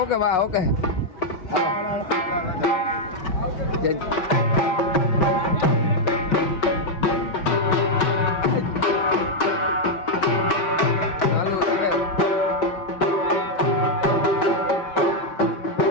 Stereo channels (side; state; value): right; late; 5.1 ms